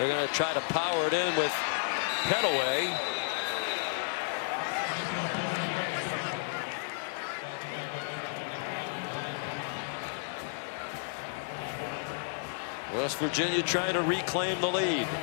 going to try to power it in with Pettaway. West Virginia trying to reclaim the lead.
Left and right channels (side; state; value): right; silent; 56 dB below the other